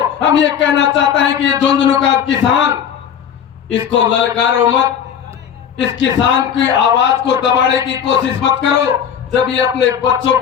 हम ये कहना चाहते हैं कि ये झुंझुनू का किसान, इसको ललकारो मत, इस किसान की आवाज को दबाने की कोशिश मत करो। जब ये अपने बच्चों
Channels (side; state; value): right; quieter; 8.4 dB